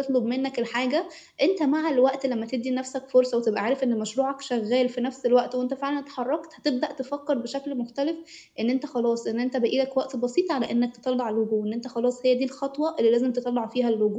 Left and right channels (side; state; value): both; identical; correlation 1.00